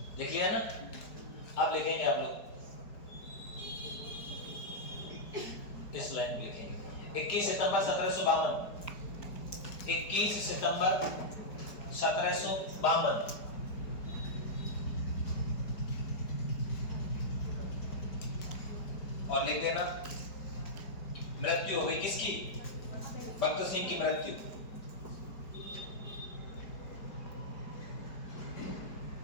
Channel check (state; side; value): late; right; 4.8 ms